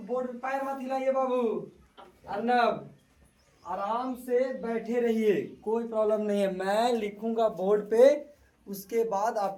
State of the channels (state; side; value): identical; both; correlation 1.00